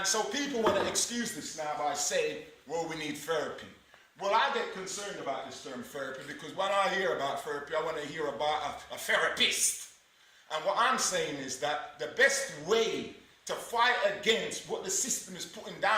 so people want to excuse this now by saying, well, we need therapy. Well, I get concerned about this term therapy because when I hear about therapy, I want to hear about a therapist. And what I'm saying is that the best way to fight against what the system is putting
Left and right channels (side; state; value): both; identical; correlation 1.00